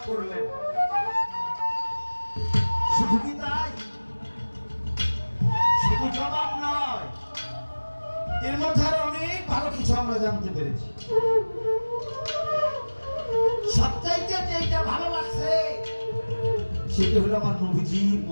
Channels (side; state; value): both; inverted; correlation -1.00